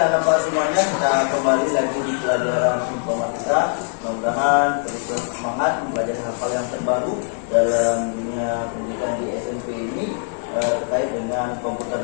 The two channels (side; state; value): right; silent; 56 dB below the other